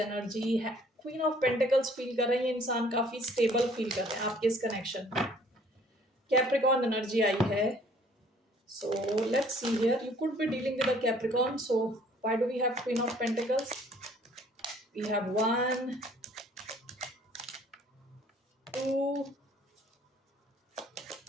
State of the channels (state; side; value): normal; both; correlation 0.57